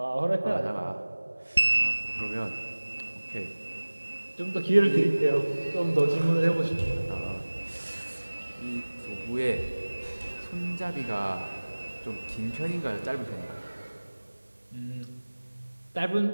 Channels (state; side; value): inverted; both; correlation -1.00